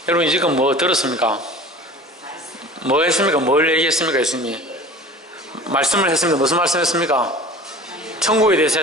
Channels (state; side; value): normal; both; correlation 0.40